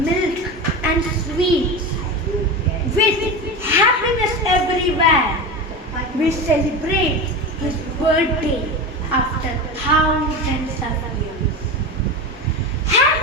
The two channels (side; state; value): both; normal; correlation 0.24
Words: and sweets, with happiness everywhere, we celebrate his birthday after thousands of years.